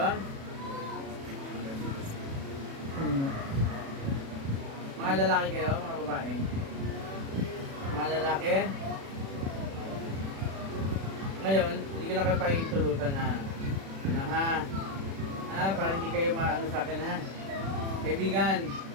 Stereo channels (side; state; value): left; late; 36 ms